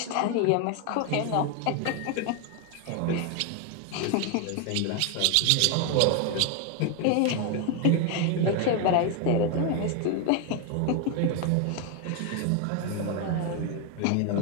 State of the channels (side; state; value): both; different; correlation 0.01